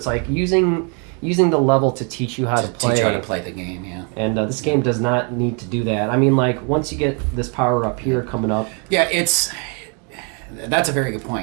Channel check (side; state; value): left; quieter; 36.9 dB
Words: like using the level to teach you how to play. Teach you how to play the game, yeah. And this game does not need to do that. I mean, like once you get this power up here coming up. Yeah, that's a very good